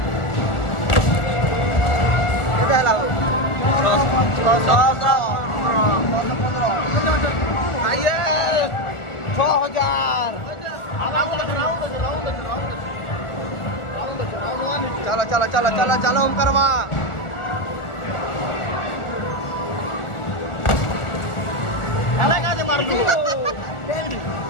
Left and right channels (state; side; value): late; right; 1.4 ms